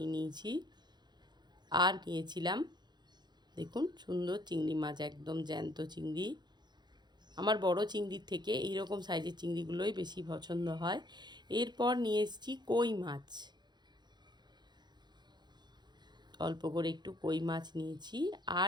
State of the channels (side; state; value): left; late; 0.21 ms